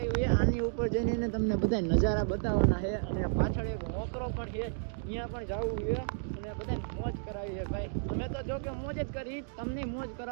છે આની ઉપર જઈને તમને બધા નજારા બતાવવાના છે અને પાછળ એક મોકરો પણ છે અહીંયા પણ જવું છે અને બધાને મોજ કરાવી છે ભાઈ અમે તો જો કે મોજ જ કરી તમને મોજ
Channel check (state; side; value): silent; left; digital silence